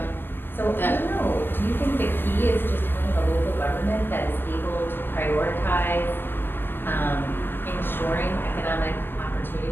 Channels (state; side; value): late; right; 0.098 ms